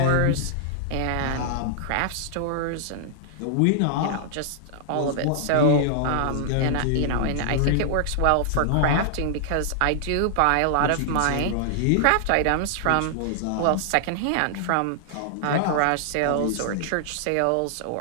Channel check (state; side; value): different; both; correlation -0.01